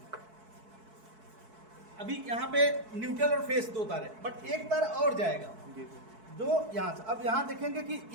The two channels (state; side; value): late; left; 4.6 ms